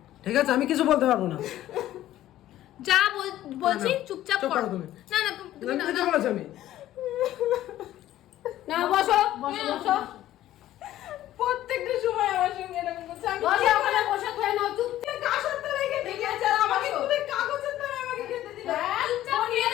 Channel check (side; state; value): right; quieter; 13.7 dB